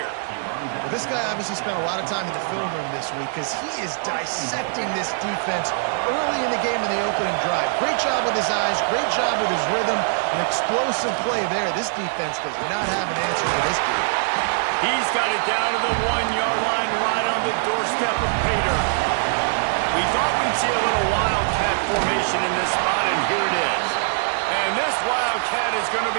Well, this guy obviously spent a lot of time in the film room this week because he is dissecting this defense early in the game in the opening drive. Great job with his eyes, great job with his rhythm, an explosive play there. This defense does not have an answer for this dude. He's got it down to the 1-yard line right on the doorstep of Pater. We thought we'd see a little wildcat formation in this spot, and here it is. And this wildcat is going to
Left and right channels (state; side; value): silent; left; digital silence